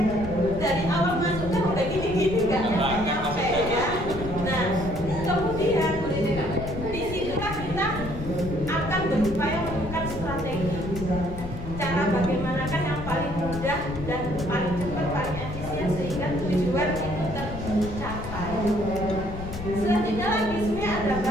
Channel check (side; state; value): left; noise; rumble, 9 dB below the sound